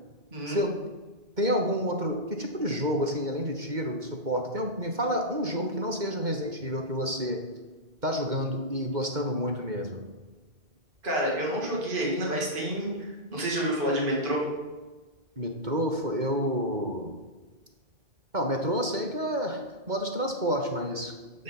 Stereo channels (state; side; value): late; left; 2.2 ms